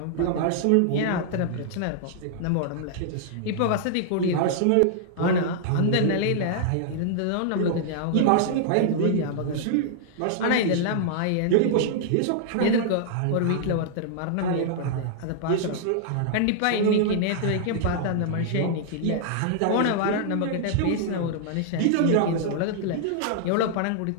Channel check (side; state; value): both; different; correlation -0.01